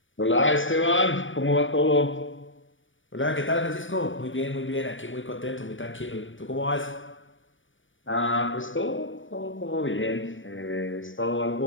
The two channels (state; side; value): late; right; 0.56 ms